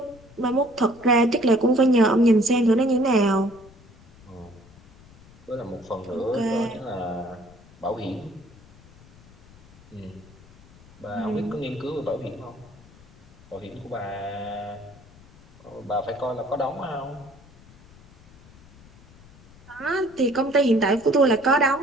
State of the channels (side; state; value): left; noise; rumble, 25 dB below the sound